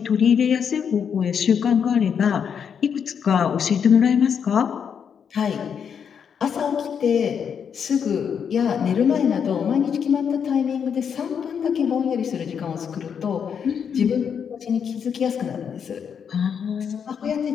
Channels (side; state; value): right; quieter; 7.3 dB